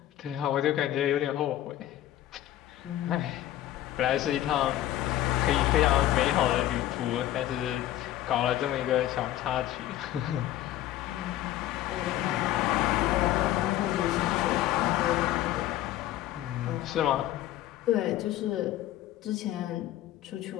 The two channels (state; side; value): quieter; right; 13.5 dB